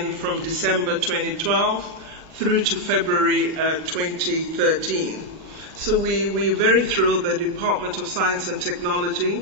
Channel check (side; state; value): left; late; 37 ms